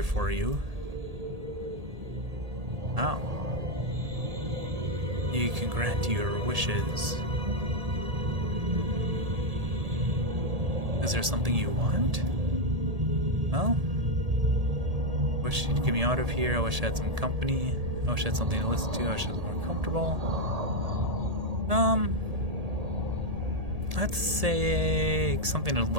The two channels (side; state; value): left; late; 1.8 ms